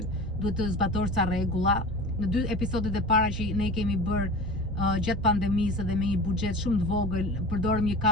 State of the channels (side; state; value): both; normal; correlation 0.35